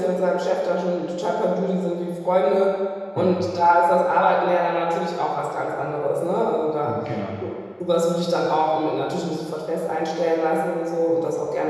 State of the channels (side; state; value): both; identical; correlation 1.00